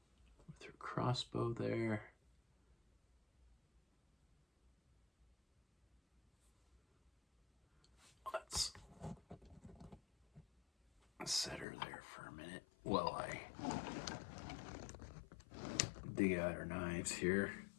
With her crossbow there. Let's set her there for a minute while I dig out her knives here.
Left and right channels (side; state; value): right; drops out; at 11.7 s